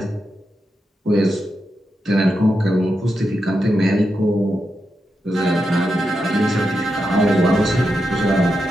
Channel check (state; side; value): normal; both; correlation 0.87